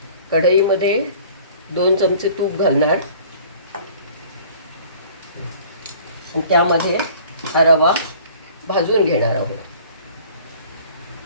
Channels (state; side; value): inverted; both; correlation -0.49